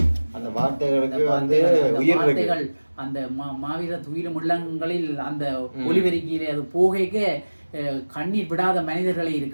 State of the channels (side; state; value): both; inverted; correlation -1.00